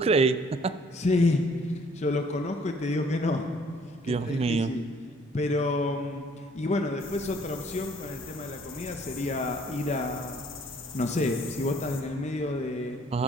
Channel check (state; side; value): normal; both; correlation 0.60